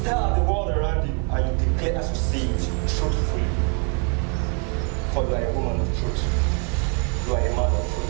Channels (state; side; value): quieter; left; 38.0 dB